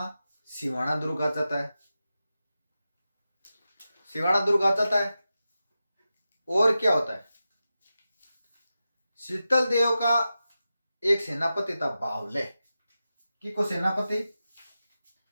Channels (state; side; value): inverted; both; correlation -0.92